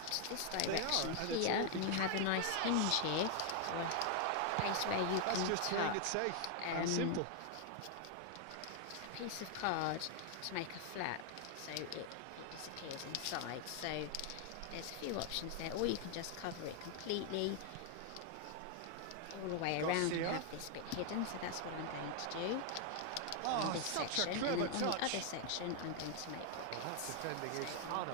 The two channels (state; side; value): different; both; correlation 0.00